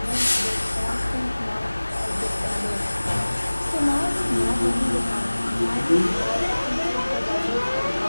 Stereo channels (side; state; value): both; inverted; correlation -1.00